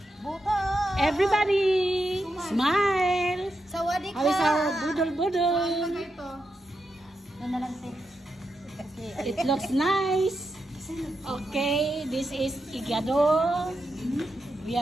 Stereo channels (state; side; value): normal; both; correlation 0.86